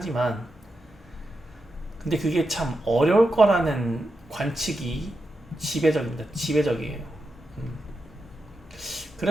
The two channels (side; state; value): both; normal; correlation 0.88